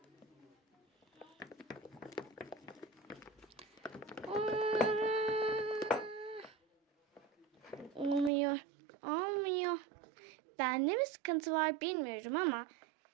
Olmuyor. Olmuyor. Bende mi sıkıntı var bilmiyorum ama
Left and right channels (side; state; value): left; drops out; at 8.3 s